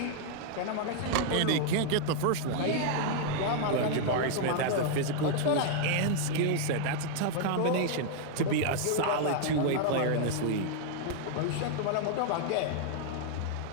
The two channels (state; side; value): different; both; correlation -0.01